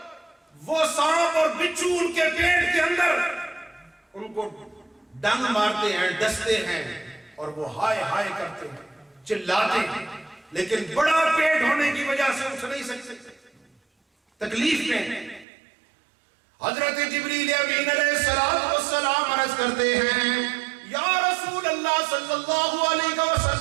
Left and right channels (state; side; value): drops out; left; at 15.5 s